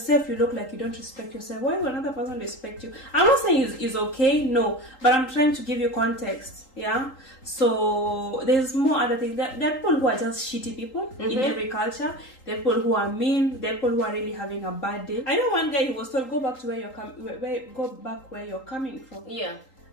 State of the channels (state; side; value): late; right; 3.8 ms